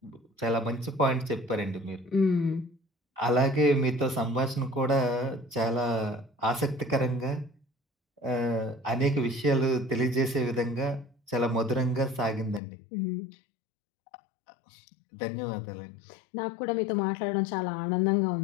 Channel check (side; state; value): right; drops out; at 12.6 s